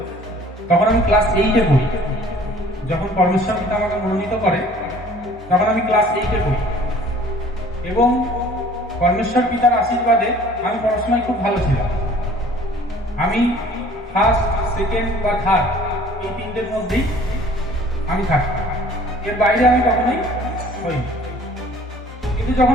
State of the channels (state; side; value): normal; both; correlation 0.52